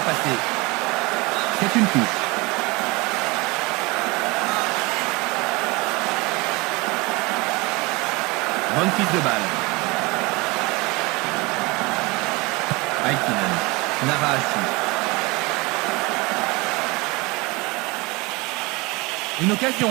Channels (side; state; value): left; quieter; 24.9 dB